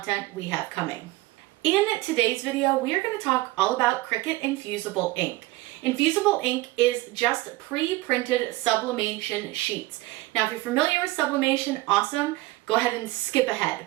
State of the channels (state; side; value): quieter; left; 19.5 dB